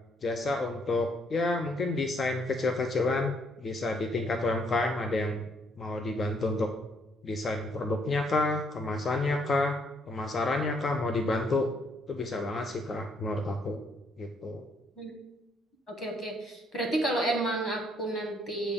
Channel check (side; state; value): both; normal; correlation 0.69